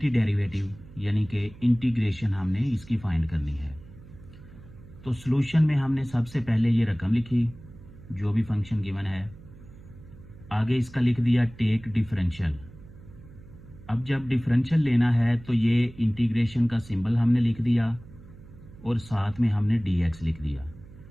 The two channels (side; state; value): right; noise; hum, 20 dB below the sound